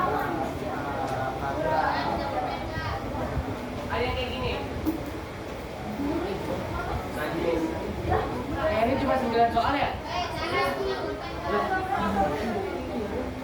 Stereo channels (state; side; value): identical; both; correlation 1.00